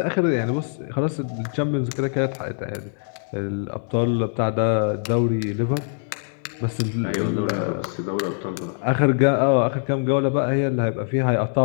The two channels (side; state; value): right; silent; 63 dB below the other